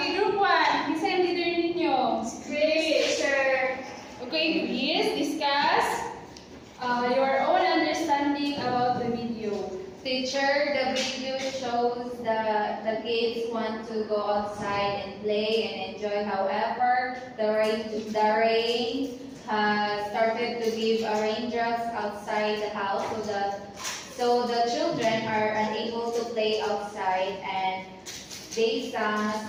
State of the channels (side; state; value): both; identical; correlation 1.00